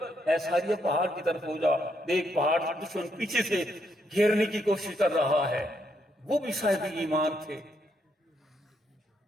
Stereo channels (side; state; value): both; normal; correlation 0.76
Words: اے ساریہ پہاڑ کی طرف ہو جا، دیکھ پہاڑ دشمن پیچھے سے گھیرنے کی کوشش کر رہا ہے. وہ بھی صاحب ایمان تھے.